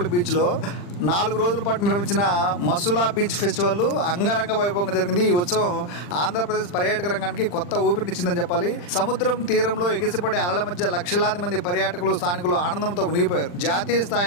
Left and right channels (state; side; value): late; right; 40 ms